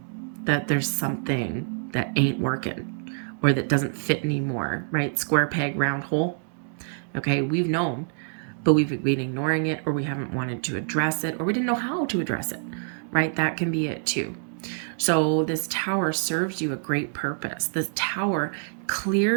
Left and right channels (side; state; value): left; silent; digital silence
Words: that there's something that ain't working or that doesn't fit anymore, right? Square peg, round hole, okay? We've known, but we've been ignoring it, or we haven't wanted to address it, or we didn't know how to address it, right? That can be it too. So this Tower serves you a great purpose. This Tower